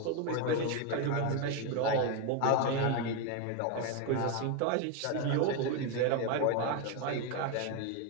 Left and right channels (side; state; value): both; different; correlation 0.02